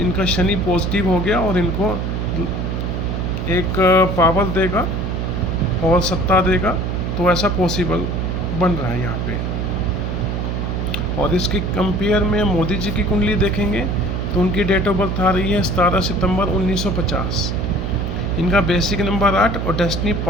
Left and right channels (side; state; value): right; noise; hum, 1 dB below the sound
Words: शनि पॉजिटिव हो गया और इनको एक पावर देगा और सत्ता देगा। तो ऐसा पॉसिबल बन रहा है यहाँ पे। और इसके कंपेयर में मोदी जी की कुंडली देखेंगे तो उनकी डेट ऑफ बर्थ आ रही है 17 सितंबर 1950। इनका बेसिक नंबर 8 और डेस्टिनी